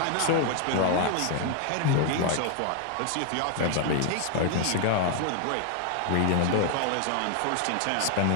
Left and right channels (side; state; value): both; different; correlation 0.00